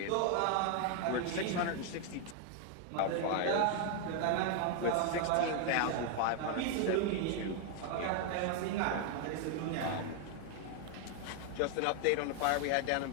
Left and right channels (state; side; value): different; both; correlation 0.00